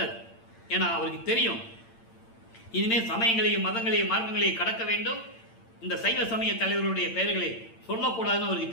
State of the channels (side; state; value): right; late; 8.8 ms